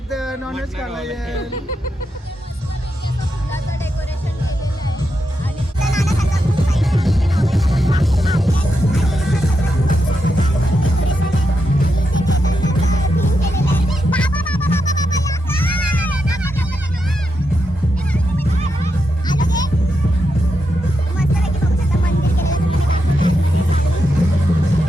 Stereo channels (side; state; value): both; normal; correlation 0.85